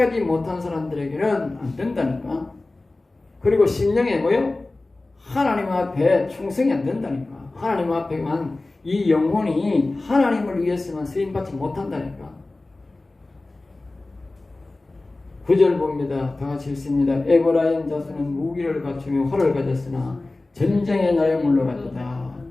못한 사람들에게는 안 된다니까. 그리고 심령에 뭐요? 하나님 앞에 충성이 안 된다니까. 하나님 앞에만 이 영혼이 하나님을 위해서만 쓰임받지 못한다니까. 9절 봅니다. 다 같이 읽습니다. 에브라임 자손은 무기를 갖추며 활을 가졌으나 전쟁의 날에 물러갔다.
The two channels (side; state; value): right; quieter; 3.0 dB